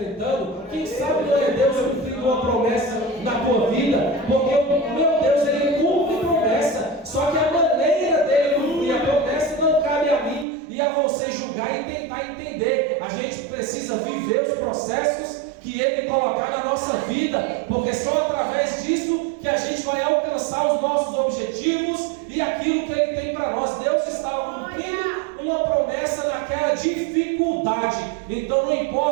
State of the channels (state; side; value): drops out; left; at 10.5 s